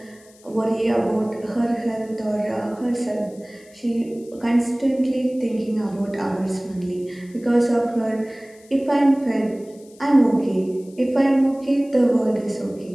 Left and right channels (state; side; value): noise; left; hiss, 27 dB below the sound